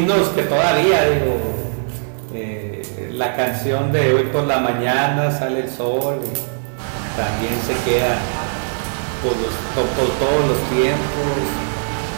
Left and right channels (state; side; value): silent; left; digital silence